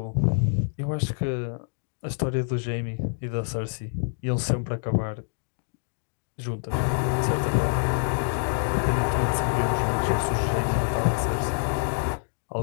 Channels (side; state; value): right; silent; digital silence